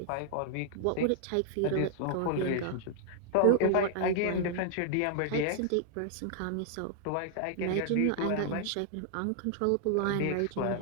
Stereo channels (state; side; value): different; both; correlation 0.00